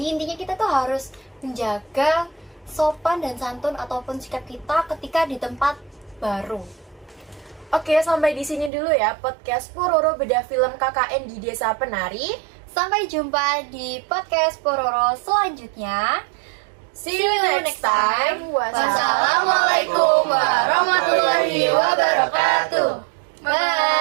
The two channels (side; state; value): left; drops out; at 8.7 s